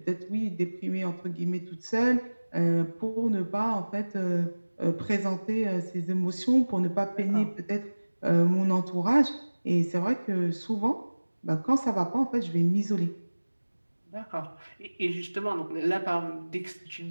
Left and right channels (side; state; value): both; inverted; correlation -1.00